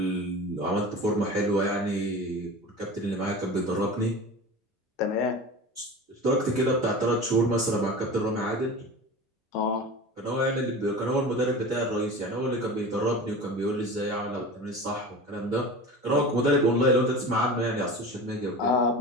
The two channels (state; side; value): normal; both; correlation 0.34